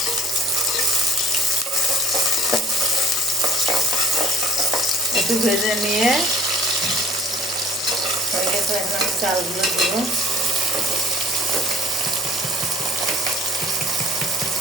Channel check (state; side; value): normal; both; correlation 0.53